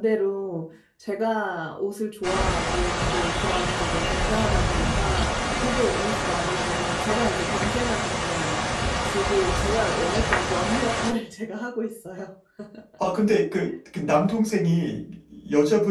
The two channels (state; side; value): identical; both; correlation 1.00